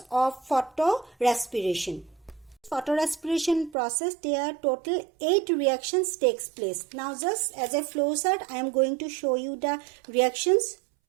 of photorespiration. Photorespiration process, there are total 8 reactions takes place. Now just as a flow chart, I am going to show you the reactions.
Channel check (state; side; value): drops out; left; at 3.8 s